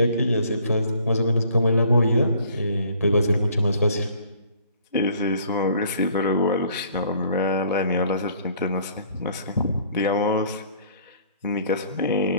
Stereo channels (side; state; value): both; inverted; correlation -0.57